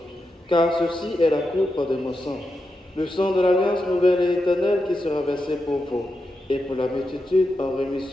car ceci est la coupe de mon sang, le sang de l'alliance nouvelle et éternelle qui sera versé pour vous et pour la multitude en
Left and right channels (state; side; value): normal; both; correlation 0.87